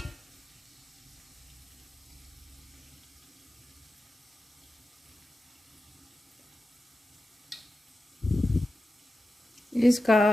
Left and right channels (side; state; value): both; normal; correlation 0.92